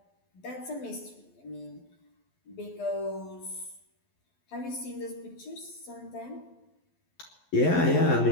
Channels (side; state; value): right; late; 11 ms